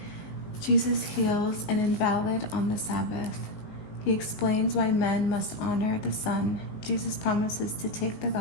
Jesus heals an invalid on the Sabbath. He explains why men must honor the Son. Jesus promises to take the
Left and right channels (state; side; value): late; right; 19 ms